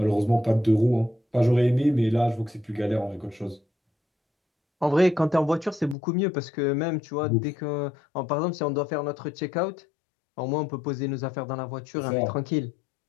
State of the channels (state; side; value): drops out; right; at 6.0 s